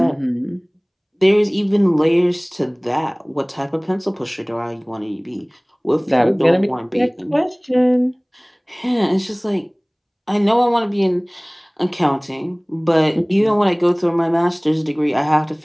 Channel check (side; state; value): both; identical; correlation 1.00